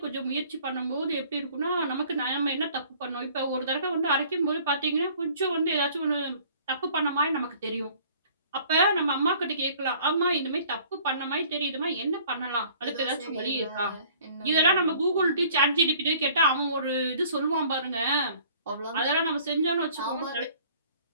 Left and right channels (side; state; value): both; inverted; correlation -0.53